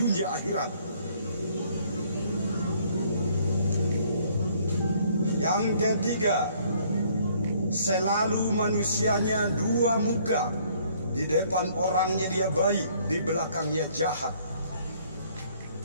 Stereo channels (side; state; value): both; inverted; correlation -0.61